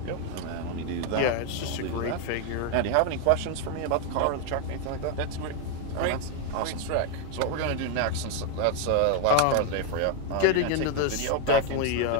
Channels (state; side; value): different; both; correlation 0.01